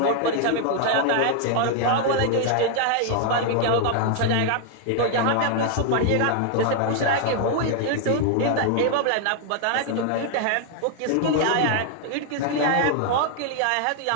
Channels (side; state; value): both; different; correlation 0.00